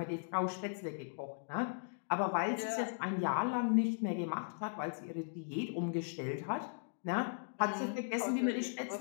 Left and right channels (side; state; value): right; silent; digital silence